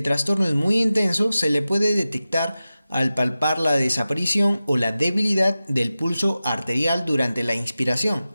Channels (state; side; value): inverted; both; correlation -0.94